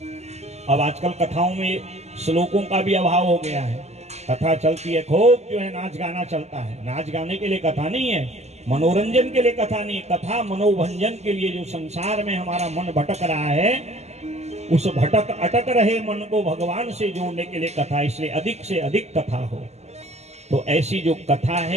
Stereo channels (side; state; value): left; late; 0.32 ms